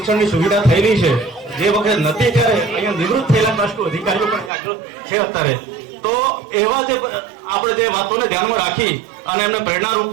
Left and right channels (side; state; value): left; drops out; at 4.5 s